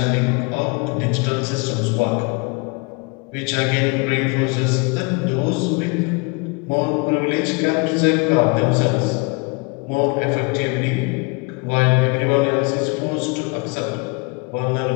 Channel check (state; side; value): quieter; right; 30.4 dB